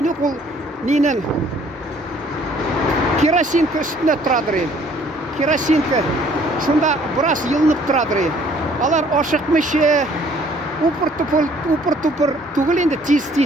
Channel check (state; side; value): normal; both; correlation 0.59